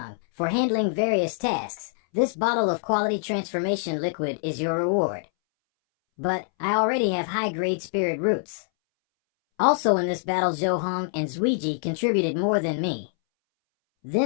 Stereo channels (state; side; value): silent; right; 61 dB below the other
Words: for handling various tasks. This bottle of quality transformation liquid is your reward. But I already have high-grade spirit roots. Also in this battle, Zhou Hong and Zuiji contributed more than me.